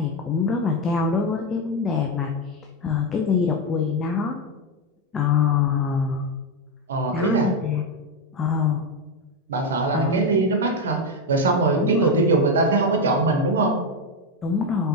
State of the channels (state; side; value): normal; both; correlation 0.07